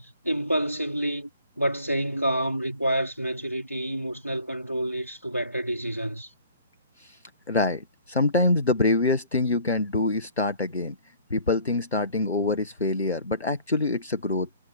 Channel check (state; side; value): inverted; both; correlation -0.52